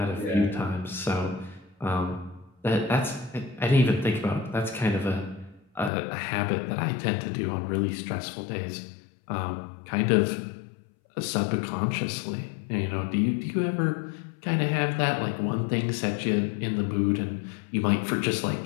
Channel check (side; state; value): right; drops out; at 5.9 s